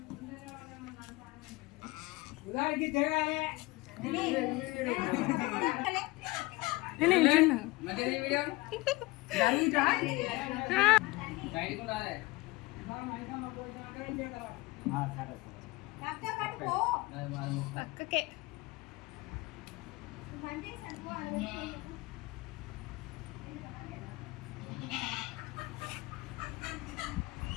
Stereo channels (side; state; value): right; quieter; 21.9 dB